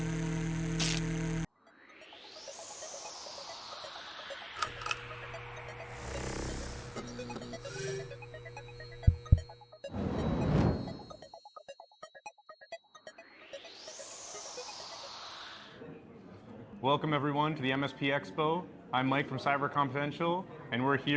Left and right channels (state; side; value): identical; both; correlation 1.00